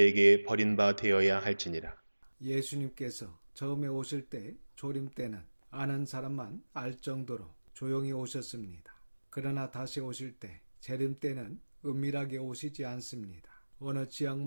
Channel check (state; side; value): inverted; both; correlation -1.00